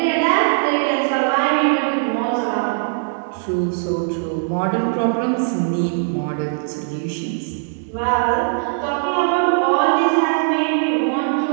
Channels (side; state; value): left; silent; digital silence